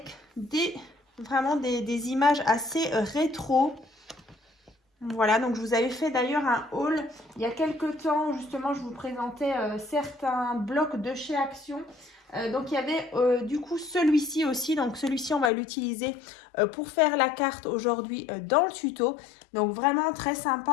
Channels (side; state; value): right; drops out; at 15.5 s